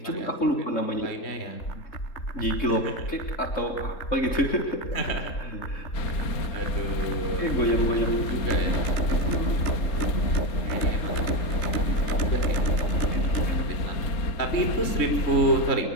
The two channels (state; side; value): late; right; 3.7 ms